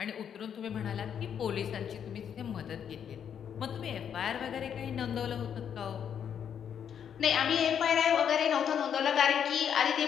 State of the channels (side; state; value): right; quieter; 8.3 dB